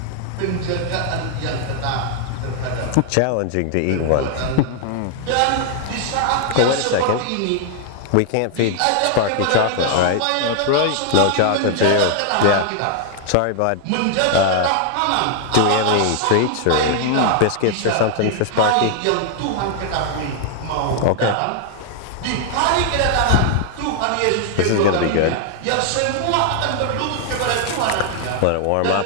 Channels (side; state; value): both; different; correlation 0.00